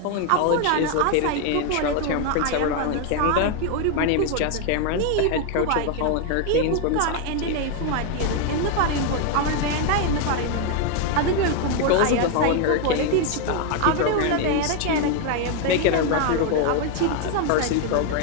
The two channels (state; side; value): different; both; correlation 0.01